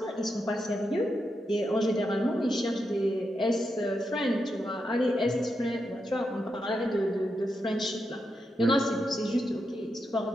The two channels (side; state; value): both; normal; correlation 0.85